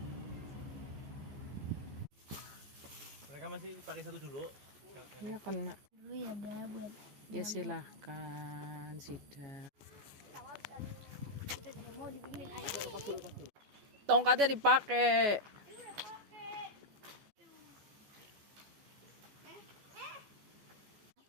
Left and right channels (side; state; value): left; late; 14 ms